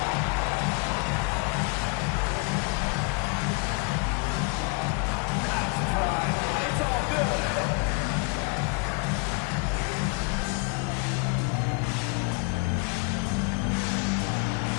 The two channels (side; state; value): right; quieter; 29.2 dB